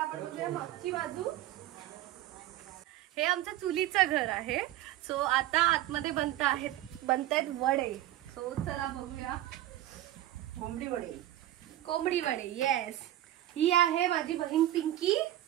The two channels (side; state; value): left; quieter; 14.0 dB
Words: आपण बघूया मागची बाजू. हे आमचं चुलीचं घर आहे. सो आता आतमध्ये बनतायत वडे. सो चला बघूया. कोंबडी वडे. येस. ही आहे माझी बहीण पिंकी